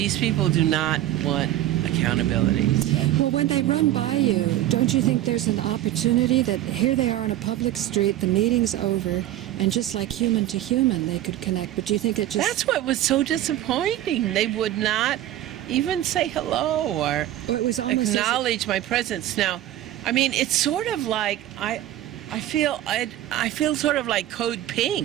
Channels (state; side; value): quieter; left; 13.6 dB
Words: people do not want accountability. Well, when they run by you, don't you think there's an opportunity that here they are on a public street, the meeting's over, and just like human to human, they could connect? But do you think it just... That's what was so disappointing. They would not even say hello or it was almost acknowledge my presence. Now, I mean, it's sort of like I feel sort of like Code